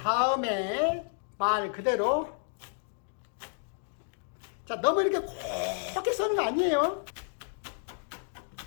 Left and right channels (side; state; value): right; silent; digital silence